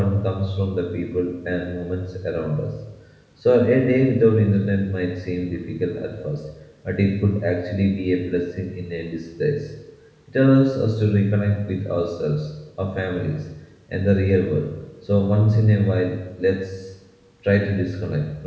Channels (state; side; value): identical; both; correlation 1.00